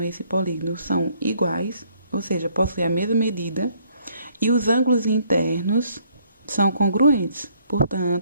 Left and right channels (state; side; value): inverted; both; correlation -0.65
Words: esse polígono são iguais, ou seja, possuem a mesma medida, e os ângulos internos são congruentes.